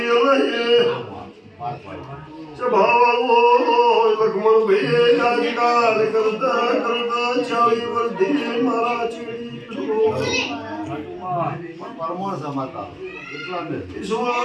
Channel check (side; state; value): both; identical; correlation 1.00